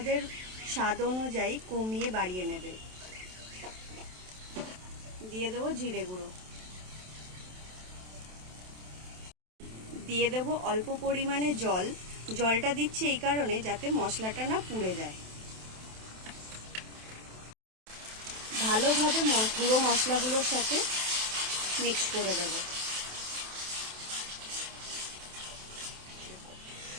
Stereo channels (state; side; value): late; left; 27 ms